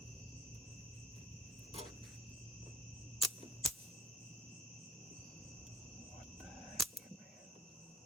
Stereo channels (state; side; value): normal; both; correlation 0.53